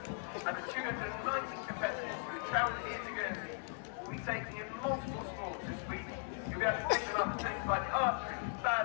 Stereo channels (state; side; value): silent; right; 52 dB below the other